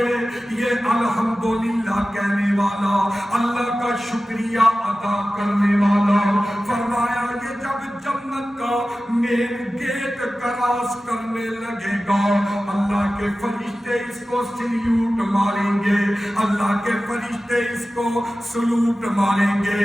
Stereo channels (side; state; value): both; normal; correlation 0.95